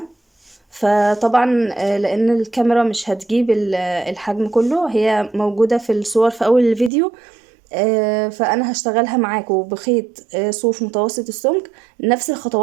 فطبعا لان الكاميرا مش هتجيب الحجم كله، هي موجودة في الصور في اول الفيديو. فانا هشتغلها معاكم بخيط صوف متوسط السمك، نفس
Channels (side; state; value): left; drops out; at 6.9 s